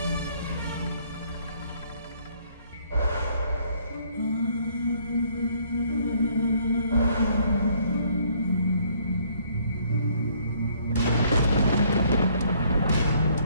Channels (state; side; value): inverted; both; correlation -0.64